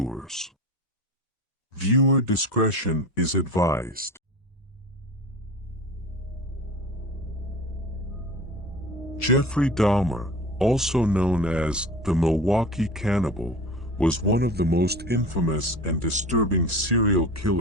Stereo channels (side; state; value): both; normal; correlation 0.35